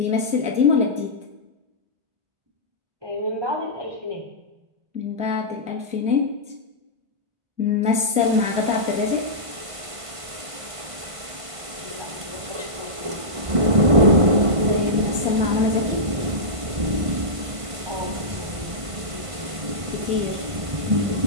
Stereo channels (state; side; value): late; left; 1.5 ms